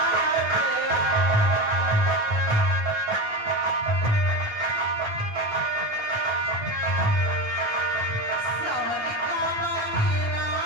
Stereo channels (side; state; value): left; late; 9.1 ms